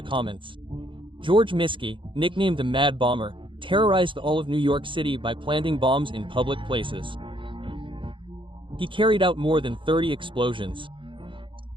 comments. George Miskey, nicknamed the Mad Bomber, terrorized all of New York City by planting bombs in public places. He carried out more than 30 explosions.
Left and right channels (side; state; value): left; late; 0.24 ms